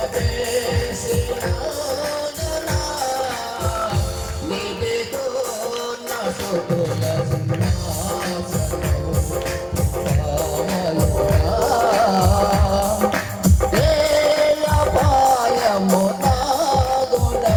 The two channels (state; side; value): identical; both; correlation 1.00